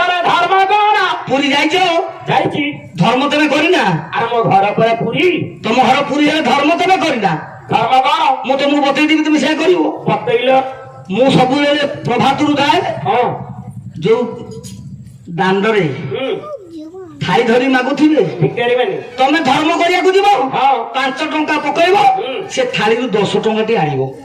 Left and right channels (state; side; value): identical; both; correlation 1.00